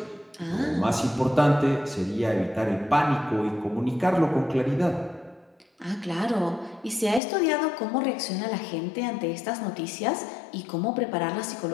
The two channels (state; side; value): drops out; right; at 7.2 s